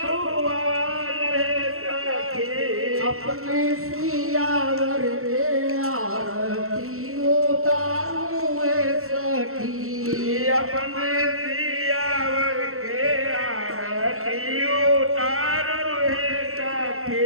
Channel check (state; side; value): late; left; 0.63 ms